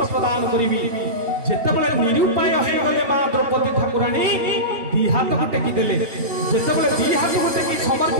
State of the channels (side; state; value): left; late; 2.8 ms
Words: प्रदान करिवि। जेते बळे निरुपाय हे गले मां द्रौपदी ठाकुराणी दी हाथ को टेकी देले। जेते बळे दी हाथ को टेकी